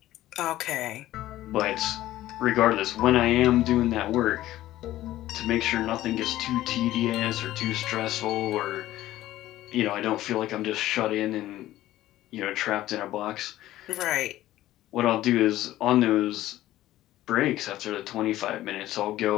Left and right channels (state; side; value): quieter; right; 14.7 dB